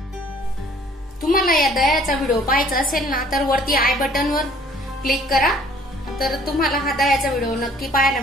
तुम्हाला या दह्याचा व्हिडिओ पाहायचा असेल ना, तर वरती आय बटन वर क्लिक करा, तर तुम्हाला हा दह्याचा व्हिडिओ नक्की पाहायला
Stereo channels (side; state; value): both; normal; correlation 0.56